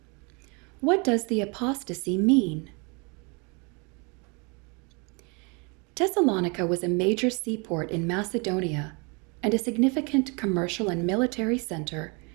What does the apostasy mean? Thessalonica was a major seaport in Macedonia and a significant commercial and military center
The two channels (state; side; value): quieter; left; 31.5 dB